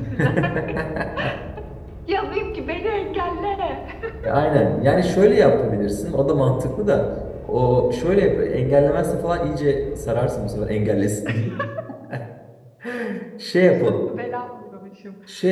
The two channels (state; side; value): identical; both; correlation 1.00